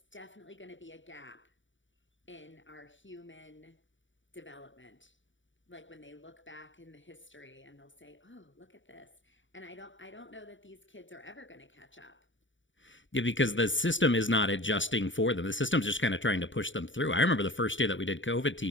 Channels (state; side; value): late; right; 0.55 ms